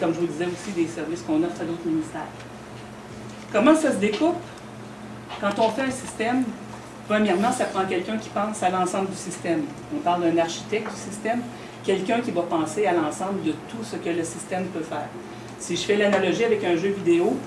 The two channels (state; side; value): identical; both; correlation 1.00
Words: je vous disais aussi, des services qu'on offre à d'autres ministères. Comment ça se découpe? Quand on fait un système, premièrement, ça prend quelqu'un qui pense à l'ensemble du système. On parle d'un architecte du système, quelqu'un qui va penser à l'ensemble de tout ce que le système peut faire. Si je fais l'analogie avec un jeu vidéo,